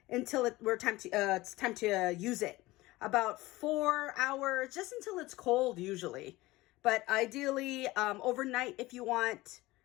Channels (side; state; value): right; quieter; 19.4 dB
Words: until it's time to use it. About 4 hours, just until it's cold usually. But ideally, overnight if you want,